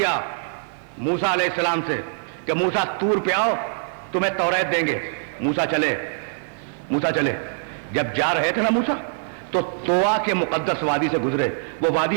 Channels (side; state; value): left; silent; 58 dB below the other